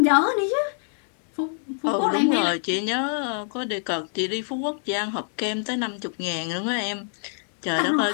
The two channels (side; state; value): right; silent; 61 dB below the other